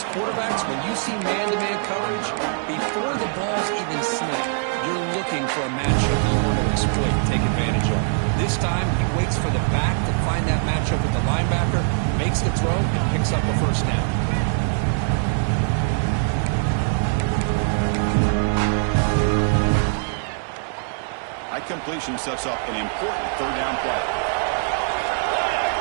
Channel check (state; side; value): silent; left; 64 dB below the other